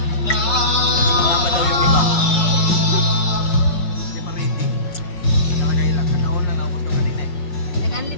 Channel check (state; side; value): late; right; 5.3 ms